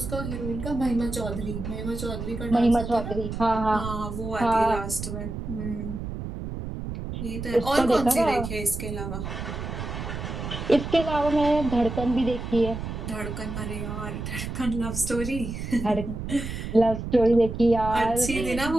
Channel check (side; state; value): right; noise; rumble, 6 dB below the sound